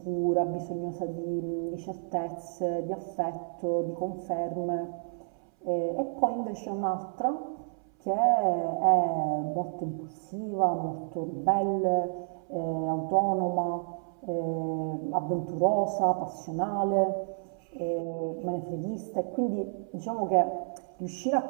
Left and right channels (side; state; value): left; silent; 58 dB below the other